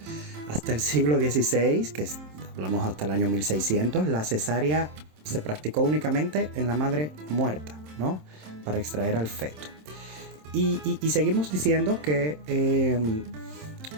Hasta el siglo XVI, que hablamos hasta el año 1600, la cesárea se practicó únicamente en la madre muerta, ¿no? Para extraer al feto. Y seguimos diciendo que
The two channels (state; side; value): late; left; 27 ms